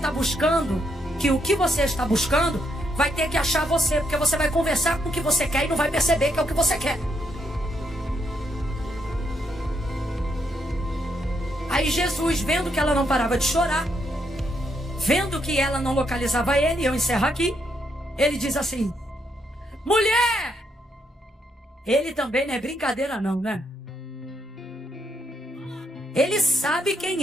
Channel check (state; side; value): normal; both; correlation 0.77